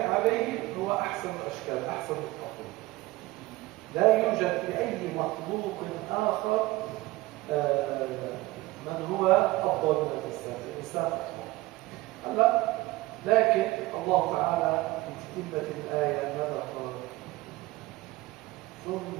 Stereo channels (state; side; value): quieter; left; 19.3 dB